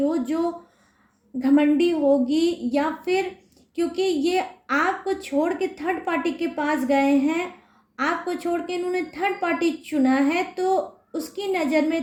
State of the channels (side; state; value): both; identical; correlation 1.00